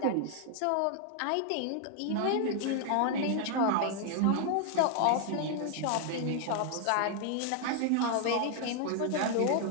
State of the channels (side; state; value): both; different; correlation 0.00